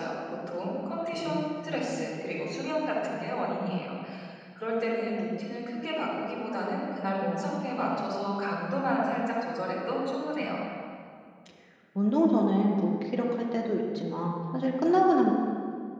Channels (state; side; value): identical; both; correlation 1.00